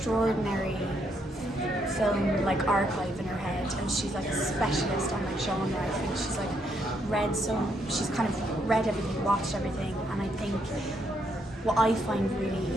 film like archive in her head, and she's like a specialist on like genre. I think she's like she's kind of read everything, watched everything, and I think what I find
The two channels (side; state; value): both; normal; correlation 0.75